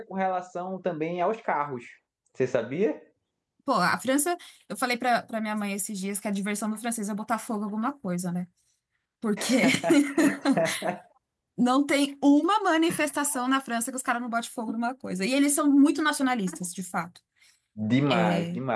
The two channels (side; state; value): both; identical; correlation 1.00